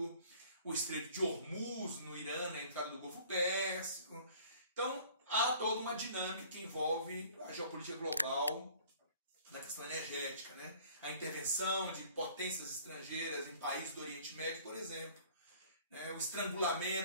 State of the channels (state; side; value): inverted; both; correlation -0.52